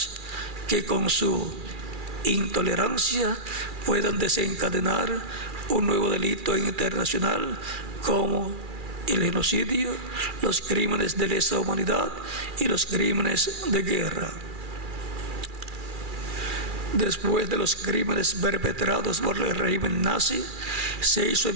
que con su intolerancia puedan desencadenar un nuevo delito internacional como el genocidio, los crímenes de lesa humanidad y los crímenes de guerra. Después de los crímenes perpetrados por el régimen nazi, se hizo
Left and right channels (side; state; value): left; late; 2.4 ms